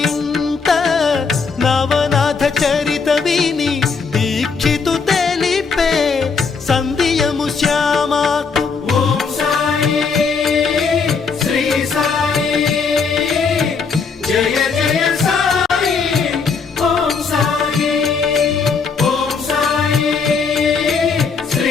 నవనాథ చరిత విని దీక్షితు తెలిపే సంధియము శ్యామాకు ఓం సాయి శ్రీ సాయి జయ జయ సాయి ఓం సాయి ఓం సాయి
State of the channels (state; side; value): quieter; right; 5.2 dB